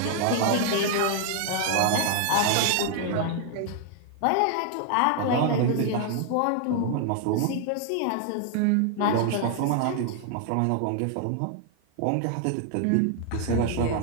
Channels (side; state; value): both; different; correlation 0.00